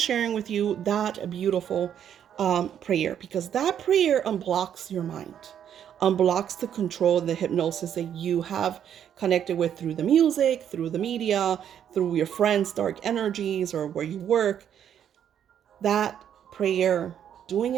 sharing with you that beautiful prayer, because that prayer unblocks your mind, unblocks the control, the hypnosis that you have connected with through the music, through the media, through your friends' dark energies, or where you work. That prayer, doing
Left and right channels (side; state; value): left; quieter; 9.3 dB